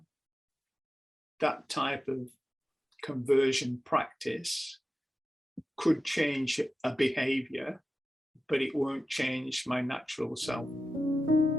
That type of conversion practice could change a behavior, but it won't change my natural self.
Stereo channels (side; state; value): both; normal; correlation 0.93